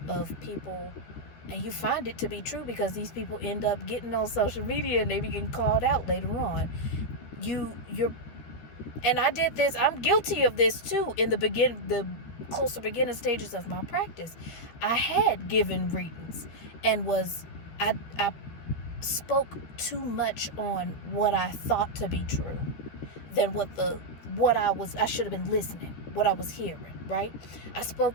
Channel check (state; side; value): late; right; 12 ms